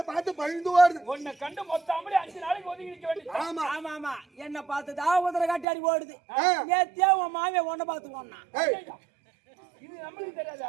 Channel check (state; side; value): drops out; left; at 5.7 s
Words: பார்த்து பயந்து ஓடுது. உன்னை கண்டு மொத்தமாலே 5 நாளைக்கு ஒதுங்கி நிக்க வேண்டியது. ஆமா ஆமா ஆமா என்ன பார்த்துதான் உதர காட்டாடி ஓடுது நேத்தியா உன் மாமியா உன்னை பார்த்து ஓடனா ஏய் இது நம்மளுக்கு